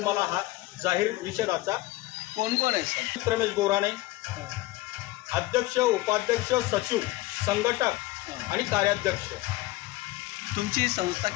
मला हा जाहीर निषेधाचा कोण आहे सर? रमेश गोराणे, अध्यक्ष, उपाध्यक्ष, सचिव, संघटक आणि कार्याध्यक्ष. तुमची संस्था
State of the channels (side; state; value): right; quieter; 18.7 dB